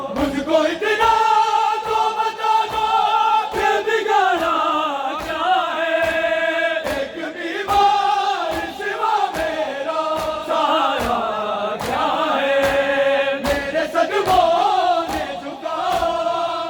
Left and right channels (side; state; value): both; identical; correlation 1.00